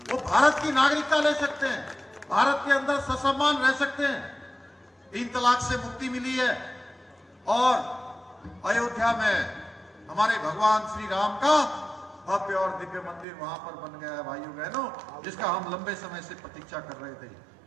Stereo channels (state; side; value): drops out; left; at 13.2 s